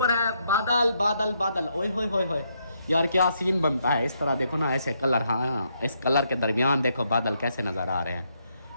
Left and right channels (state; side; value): inverted; both; correlation -0.77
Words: है बादल बादल बादल, ओए होए होए होए यार क्या सीन बनता है इस तरह, देखो ना ऐसे कलर, हाँ इस कलर के दरमियान देखो बादल कैसे नजर आ रहे हैं।